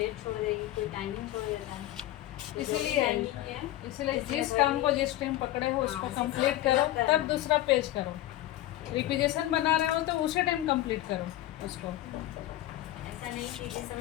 छोड़ देगी, कोई टाइमिंग छोड़ देता है। इसलिए जिस काम को जिस टाइम पकड़े हो उसको कंप्लीट करो, तब दूसरा पेज करो। रिक्वेजिशन बना रहे हो तो उसी टाइम कंप्लीट करो उसको। ऐसा नहीं कि जिस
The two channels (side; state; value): right; quieter; 14.8 dB